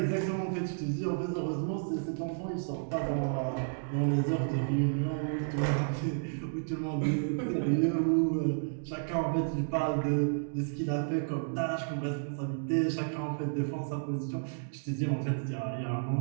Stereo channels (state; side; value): silent; left; digital silence